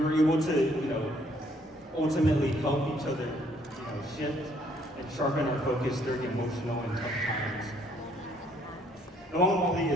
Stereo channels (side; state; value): both; normal; correlation 0.65